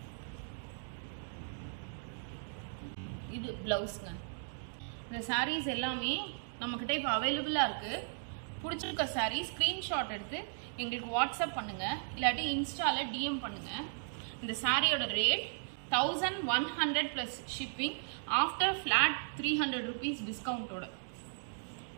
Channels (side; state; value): left; silent; digital silence